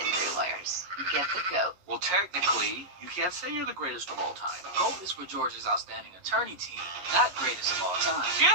Lawyers. Get the GOAT. Well, technically, you can't say you're the greatest of all time. GOAT is for George's outstanding attorney team, not greatest of all time.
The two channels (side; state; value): left; late; 11 ms